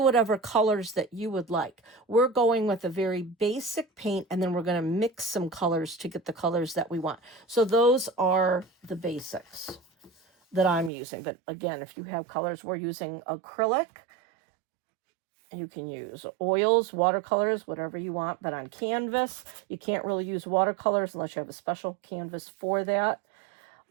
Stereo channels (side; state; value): left; drops out; at 10.9 s